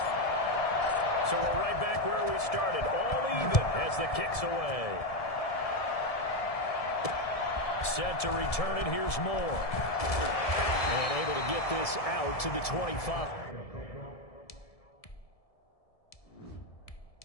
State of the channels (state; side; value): late; right; 1.7 ms